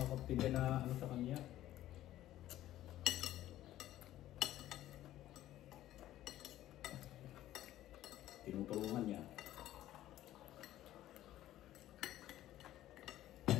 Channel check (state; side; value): quieter; right; 13.8 dB